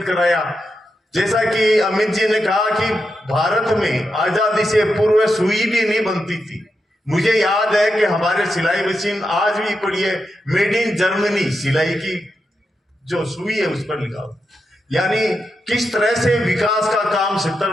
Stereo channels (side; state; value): both; normal; correlation 0.86